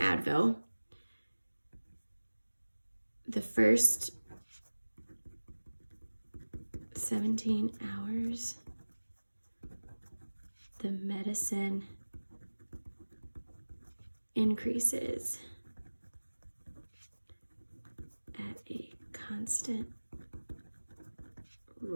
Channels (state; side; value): inverted; both; correlation -1.00